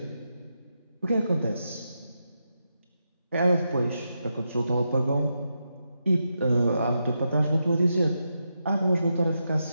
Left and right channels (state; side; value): inverted; both; correlation -0.86